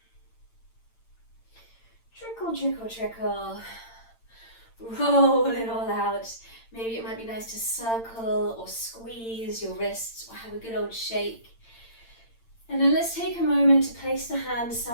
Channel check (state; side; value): late; right; 8.8 ms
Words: Trickle, trickle, trickle. Roll it all out. Maybe it might be nice to circle or squeeze your wrists or have a good old shake. And then let's take a moment to place the hands